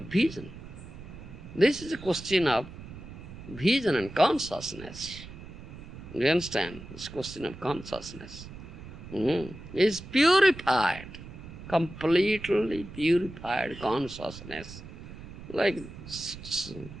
This is a question of vision and consciousness. Do you understand? This question of consciousness. Is purified, completely purified consciousness. Like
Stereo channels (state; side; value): noise; right; rumble, 14 dB below the sound